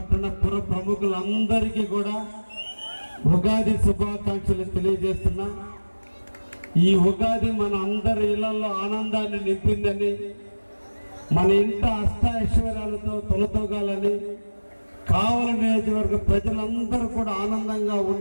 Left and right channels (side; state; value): both; inverted; correlation -1.00